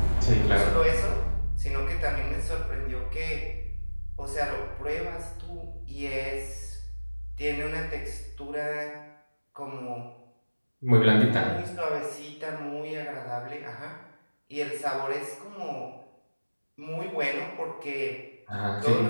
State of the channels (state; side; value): inverted; both; correlation -1.00